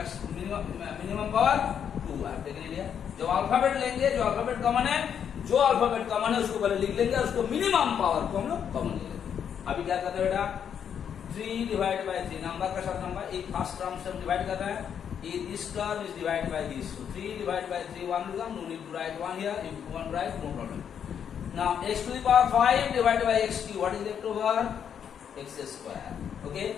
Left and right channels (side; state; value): right; quieter; 8.2 dB